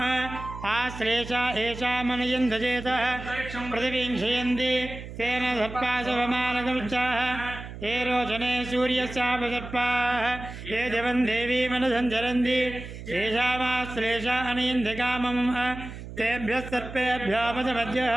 आश्लेषा एषा मनयन्धजेतः पृथिवीं क्षयन्ति तेन सर्पाशवमानकमुच्चाः ये रोचने सूर्यस्यापसर्पाः ये दिवं देवीमनुसञ्चरन्ति येषामाश्लेषा अनयन्ति कामम् तेभ्यः सर्पेभ्यो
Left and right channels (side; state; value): right; noise; hum, 11 dB below the sound